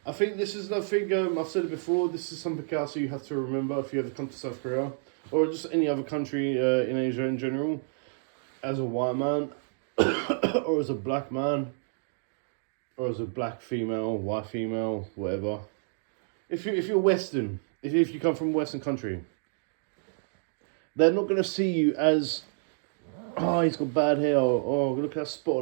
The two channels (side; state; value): left; silent; digital silence